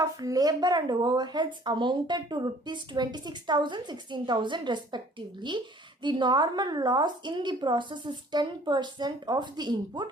of labor and overheads amounted to rupees 26,000, 16,000 respectively. The normal loss in the process is 10% of the input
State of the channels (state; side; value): normal; both; correlation 0.54